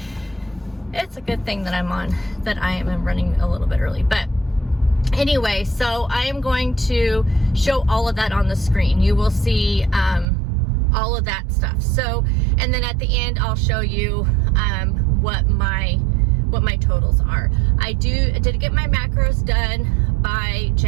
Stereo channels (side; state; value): left; drops out; at 10.2 s